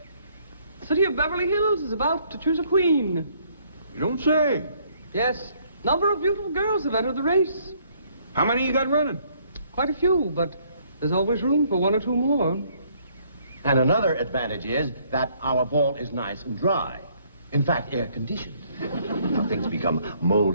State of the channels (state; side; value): inverted; both; correlation -0.65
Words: the city of Beverly Hills is about to choose a queen. You don't say. Yes, number of beautiful girls have entered the race. How many you got running? Quite a few, but there's always room for one or two more. And another advantage is that our vault is nice and dry. In fact, air-conditioned. Now, things become